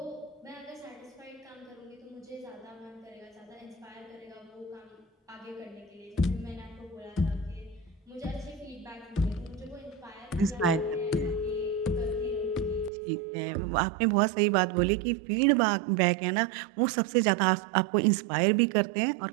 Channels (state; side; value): drops out; left; at 12.9 s